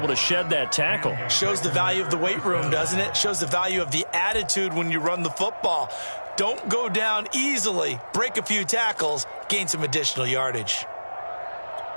to shed that tackle. Shows the value of the weight room, doesn't it? Shows the value of the attitude when you run the football. Don't go down easily. Break a few tackles, gain some additional yardage.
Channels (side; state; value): both; inverted; correlation -1.00